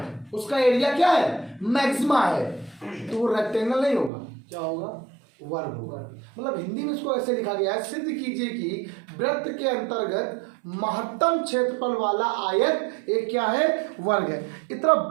उसका एरिया क्या है, मैक्सिमा है, तो वो रेक्टेंगल नहीं होगा, क्या होगा, वर्ग होगा। मतलब हिंदी में इसको ऐसे लिखा गया है, सिद्ध कीजिए कि वृत्त के अंतर्गत महत्तम क्षेत्रफल वाला आयत एक क्या है, वर्ग है। इतना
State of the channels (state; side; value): drops out; left; at 4.1 s